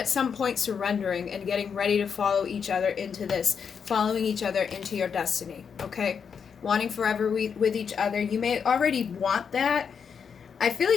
some point surrendering and getting ready to follow each other into this, following each other into your destiny, okay? Wanting forever with each other. You may already want that. I feel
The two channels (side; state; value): right; quieter; 6.7 dB